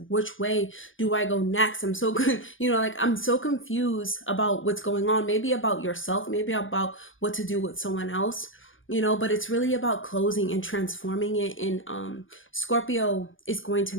which way do I go next? I'm so good, I'm so confused about what's going on, maybe about yourself, maybe about what to do with someone else. But it's really about closing and transforming it. And Scorpio is going to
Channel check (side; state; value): right; late; 0.57 ms